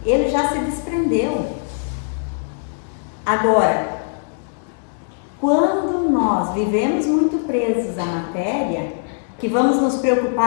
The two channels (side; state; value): right; silent; digital silence